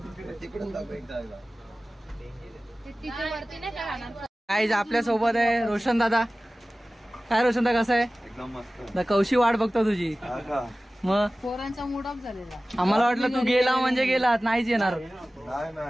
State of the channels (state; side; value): normal; both; correlation 0.97